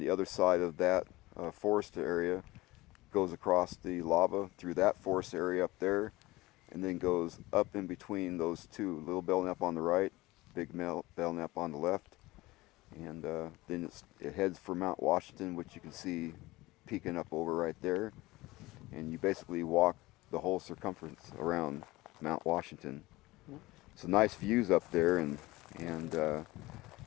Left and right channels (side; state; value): right; quieter; 19.9 dB